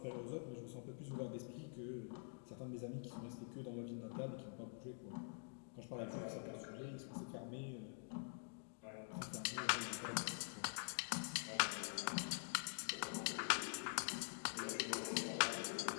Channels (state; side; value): silent; right; digital silence